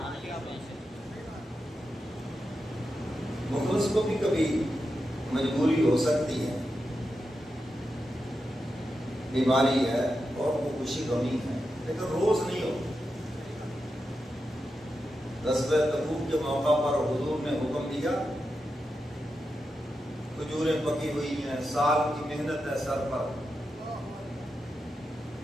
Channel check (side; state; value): both; normal; correlation 0.89